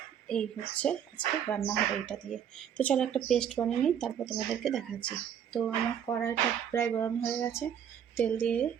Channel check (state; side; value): quieter; left; 8.8 dB